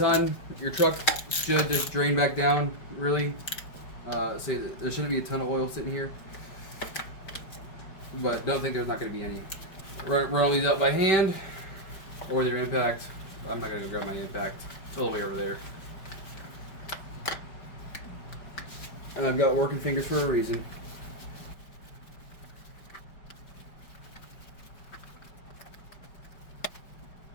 Your truck should just drain back down, really. So there shouldn't be a ton of oil sitting here. But don't think there's not gonna be any. Run all these out by hand, or with your impact. I'm not gonna go grab my impact. It's all the way over there. And I've got working fingers for a reason.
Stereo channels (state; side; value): late; right; 5.2 ms